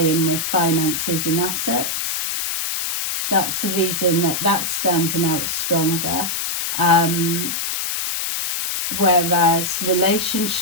with finances and assets. That's the reason that that's standing out stronger. Whereas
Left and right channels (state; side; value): noise; left; hiss, 2 dB below the sound